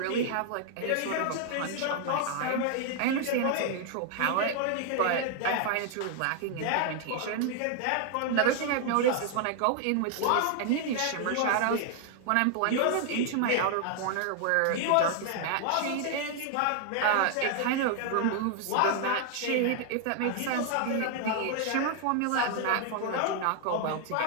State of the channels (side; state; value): both; different; correlation 0.00